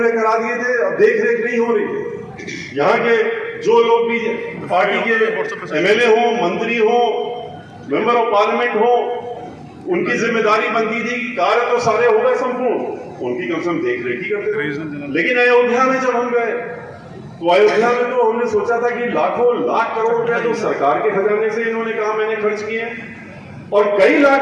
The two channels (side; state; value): both; identical; correlation 1.00